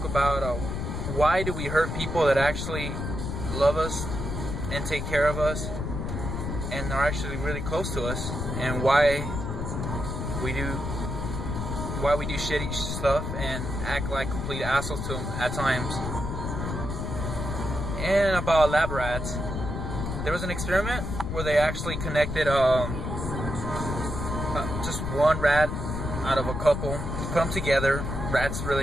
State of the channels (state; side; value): noise; left; rumble, 4 dB below the sound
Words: about why do we hurt people that actually love us and take care of us and are actually really close to us, and why we do shitty stuff and act like complete assholes to them at times. And about lab rats, there was an experiment where they actually connected just one rat out of a couple, put them together. Rats